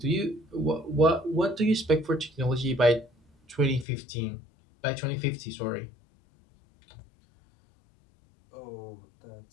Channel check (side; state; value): right; drops out; at 3.9 s